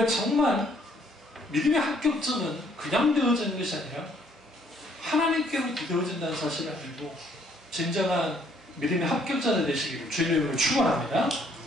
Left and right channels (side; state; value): both; normal; correlation 0.65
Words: 정말 믿음의 합격점은 그냥 되어지는 것이 아니라 하나님께로 되어진다는 사실을 알고 진정한 믿음의 합격자가 되시기를 주님의 이름으로 축원합니다.